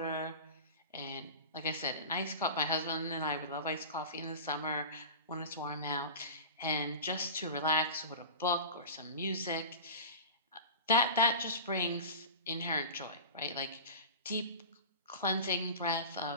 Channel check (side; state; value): both; inverted; correlation -0.32